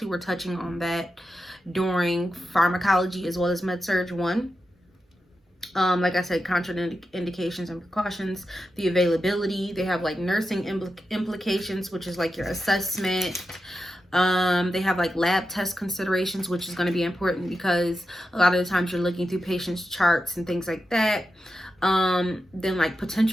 were touching on that during pharmacology as well as Med-Surg 1. Like I said, contraindications and precautions, the availability. They have like nursing implications, which is like your assessment. They have like lab test considerations, which is going to be important because a lot of the times you're looking through patients' charts and things like that. Then like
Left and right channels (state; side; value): normal; both; correlation 0.89